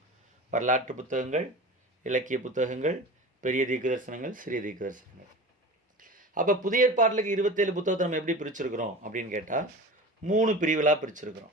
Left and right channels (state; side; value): normal; both; correlation 0.33